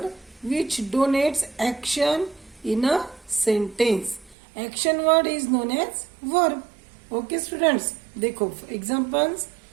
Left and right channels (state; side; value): drops out; left; at 4.4 s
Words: which denotes action in a sentence. Action word is known as verb. Okay students, देखो examples.